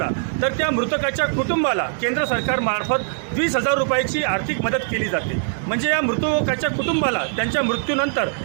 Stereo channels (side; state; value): left; silent; 64 dB below the other